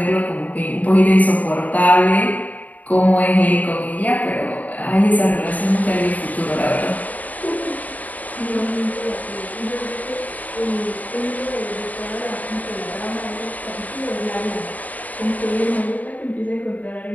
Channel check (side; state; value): right; late; 0.075 ms